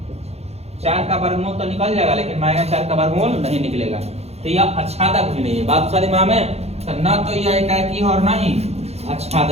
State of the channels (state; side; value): late; left; 0.31 ms